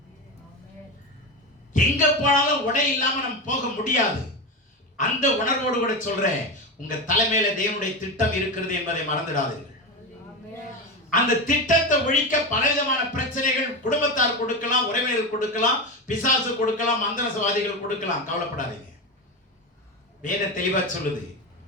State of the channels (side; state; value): both; normal; correlation 0.18